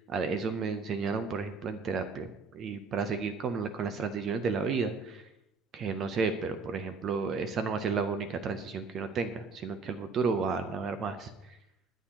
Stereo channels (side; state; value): left; quieter; 4.6 dB